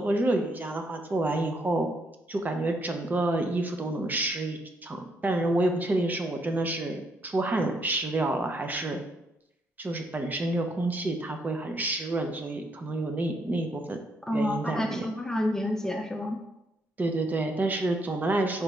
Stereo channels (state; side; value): normal; both; correlation 0.74